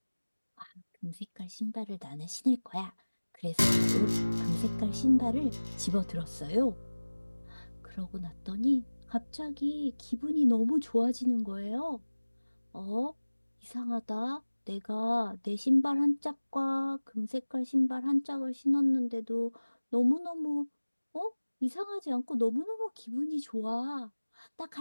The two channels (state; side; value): inverted; both; correlation -1.00